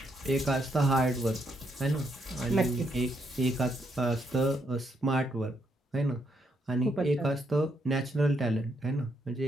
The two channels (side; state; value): both; normal; correlation 0.77